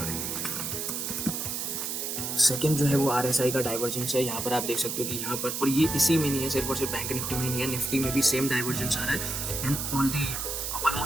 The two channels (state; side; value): noise; right; hiss, 3 dB below the sound